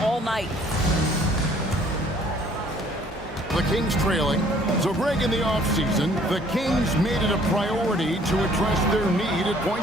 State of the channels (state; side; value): normal; both; correlation 0.58